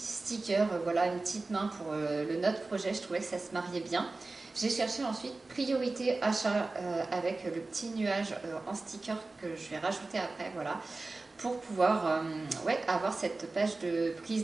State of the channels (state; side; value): quieter; left; 3.4 dB